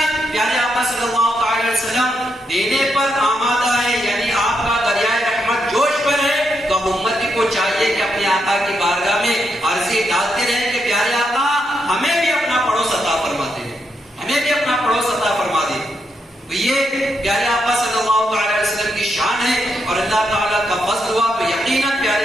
پیارے آقا صلی اللہ علیہ وسلم دینے پر آمادہ ہے، یعنی آپ کا دریائے رحمت جوش پر ہے، تو اب امتی کو چاہیے کہ اپنے آقا کی بارگاہ میں عرضی ڈالتے رہیں کہ پیارے آقا ہمیں بھی اپنا پڑوس عطا فرما دے، ہمیں بھی اپنا پڑوس عطا فرما دے۔ تو یہ پیارے آقا صلی اللہ علیہ وسلم کی شان ہے، اور اللہ تعالیٰ کا فضل ہوا تو یقیناً پیارے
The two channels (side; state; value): both; normal; correlation 0.80